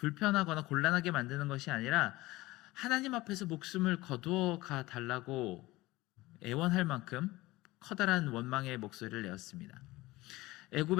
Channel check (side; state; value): right; quieter; 19.5 dB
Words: 곤란하게 만드는 것이 아니라 하나님 앞에서 목숨을 거두어 가 달라고 애원할 만큼 커다란 원망의 목소리를 내었습니다.